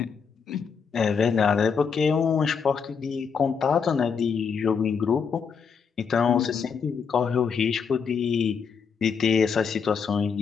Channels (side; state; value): right; quieter; 6.2 dB